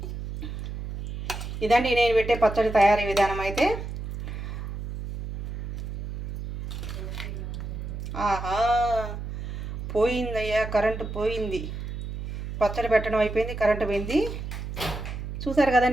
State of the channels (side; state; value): right; noise; hum, 7 dB below the sound